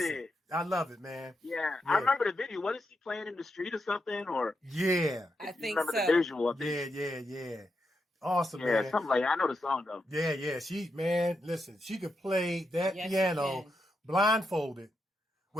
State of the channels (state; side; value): normal; both; correlation 0.84